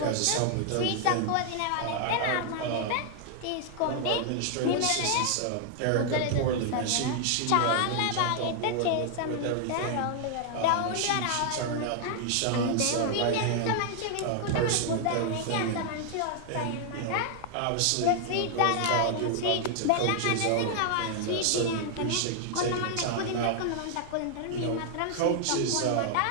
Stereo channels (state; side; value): different; both; correlation 0.00